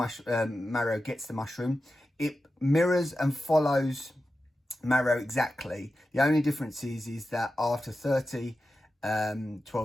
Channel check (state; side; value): normal; both; correlation 0.92